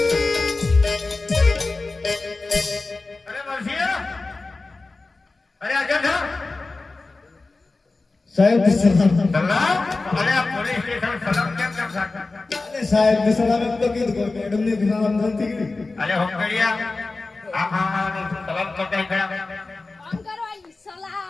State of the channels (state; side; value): quieter; right; 3.5 dB